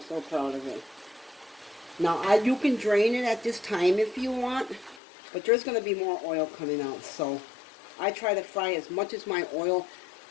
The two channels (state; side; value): drops out; right; at 5.0 s